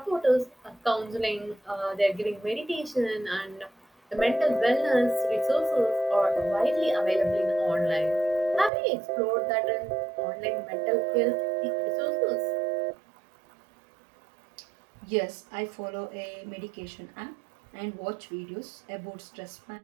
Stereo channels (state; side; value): drops out; left; at 8.7 s